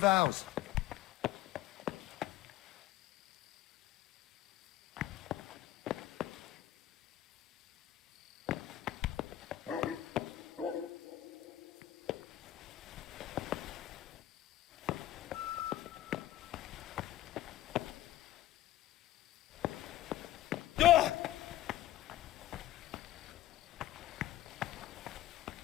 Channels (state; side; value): quieter; right; 14.2 dB